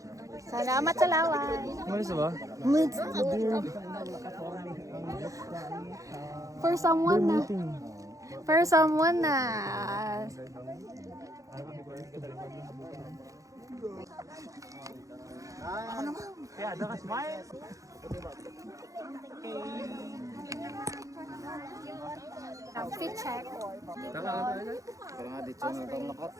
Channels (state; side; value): late; left; 0.16 ms